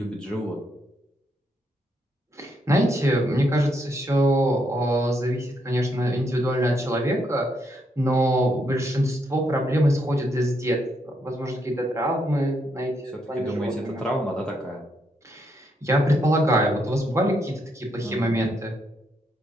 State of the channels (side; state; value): both; normal; correlation 0.77